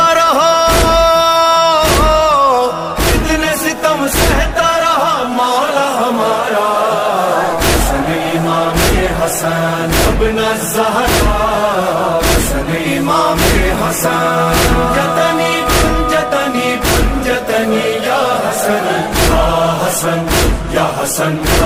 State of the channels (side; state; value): both; identical; correlation 1.00